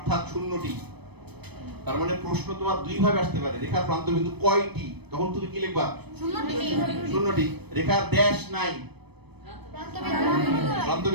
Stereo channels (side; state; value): left; late; 0.98 ms